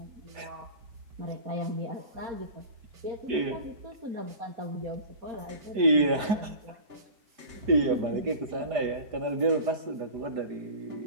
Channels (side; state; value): left; late; 4.9 ms